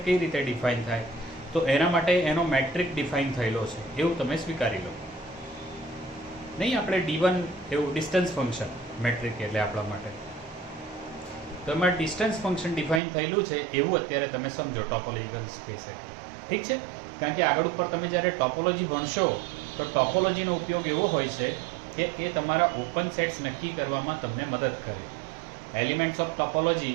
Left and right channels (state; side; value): drops out; left; at 13.0 s